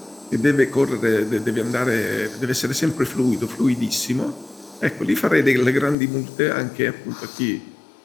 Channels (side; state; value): right; drops out; at 6.0 s